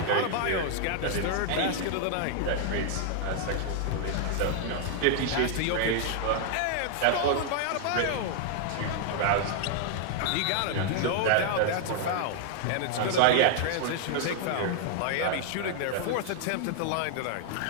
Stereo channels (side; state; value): both; different; correlation -0.01